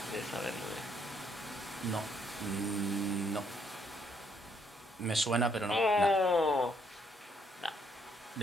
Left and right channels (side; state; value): both; normal; correlation 0.70